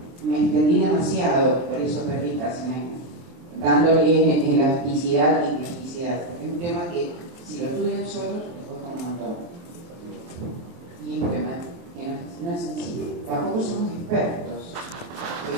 me extendí demasiado, por eso perdí casi un año, dándole elasticidad y plasticidad. Es un tema que, si lo estudian solos, les cuesta un montón. Y es un tema que no es sencillo. Tampoco somos expertos,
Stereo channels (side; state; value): left; late; 23 ms